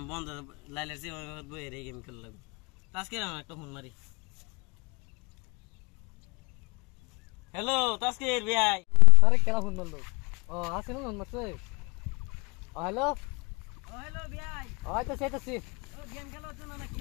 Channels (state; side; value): quieter; right; 32.5 dB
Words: বন্ধ লাইলের সিম বইয়ে রে গেম খেলা লাগবে তাস্কির আমার একটা ফোন মারি হ্যালো তাস্কির ভাই আরে কেলা ফোন মারলো ও আসে না ফোন মারছে হ্যালো হ্যালো ভাই হয়তো সেটাছি ও গেম খেলা হচ্ছে না নাকি